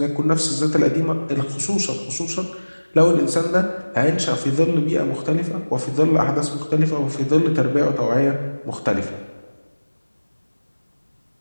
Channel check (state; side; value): inverted; both; correlation -1.00